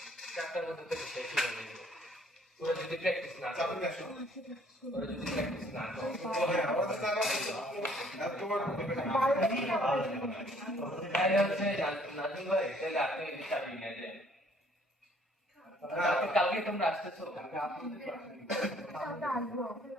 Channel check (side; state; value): both; normal; correlation 0.60